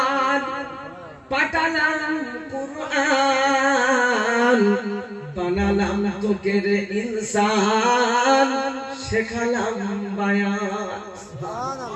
পাঠালাম কুরআন, বানালাম তোকে রে ইনসান, শেখালাম বায়ান।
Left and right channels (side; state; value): both; identical; correlation 1.00